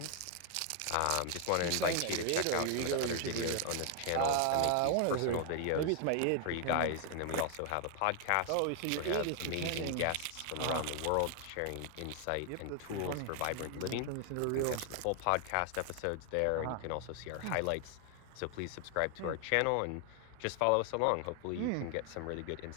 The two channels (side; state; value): both; different; correlation 0.00